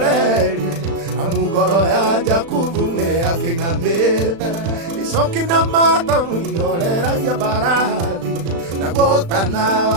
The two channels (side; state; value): left; late; 36 ms